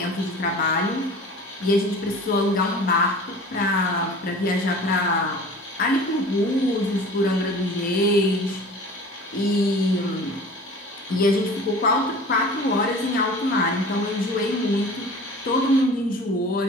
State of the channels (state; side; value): normal; both; correlation 0.42